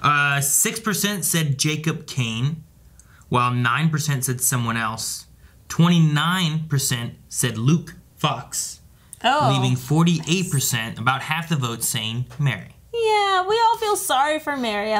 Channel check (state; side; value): identical; both; correlation 1.00